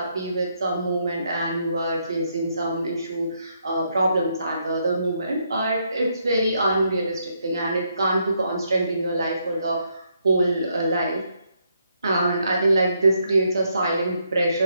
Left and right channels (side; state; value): both; inverted; correlation -0.76